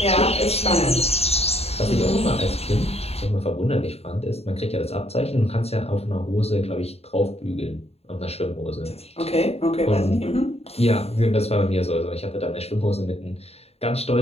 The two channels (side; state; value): right; late; 0.30 ms